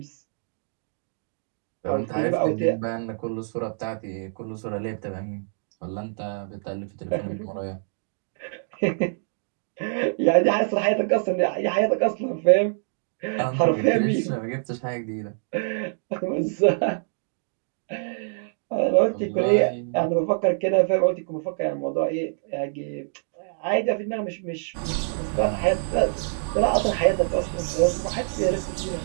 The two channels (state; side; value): silent; left; digital silence